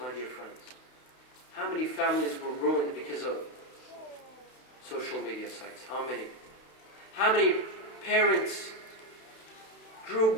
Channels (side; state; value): right; late; 32 ms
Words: dear friends. How many families were ruined because of social media sites? How many? How many parents grew